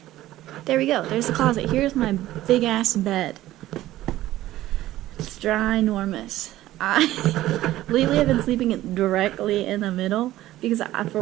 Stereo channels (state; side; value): quieter; left; 15.1 dB